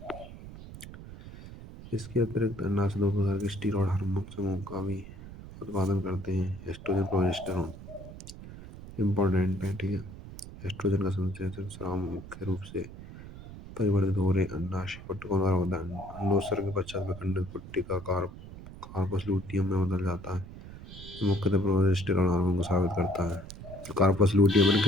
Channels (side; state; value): right; noise; rumble, 14 dB below the sound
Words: इसके अतिरिक्त अंडाशय दो प्रकार के स्टेरॉयड हार्मोन समूह का भी उत्पादन करते हैं। एस्ट्रोजन प्रोजेस्टेरोन इम्पोर्टेंट है। ठीक है। एस्ट्रोजन का संश्लेषण स्राव मुख्य रूप से परिवर्तित हो रहे अंडाशय पट्टिकों द्वारा होता है। अंडोत्सर्ग के पश्चात विखंडित पुट्टिका कार्पस लूटियम में बदल जाता है। मुख्यतः प्रोजेस्टेरोन हार्मोन को साबित करता है। कार्पस लूटियम में